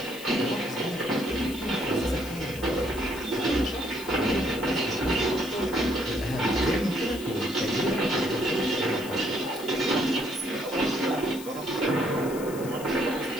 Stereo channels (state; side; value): noise; left; hiss, 15 dB below the sound